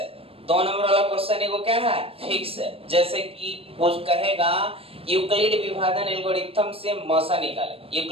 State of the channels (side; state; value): left; late; 0.28 ms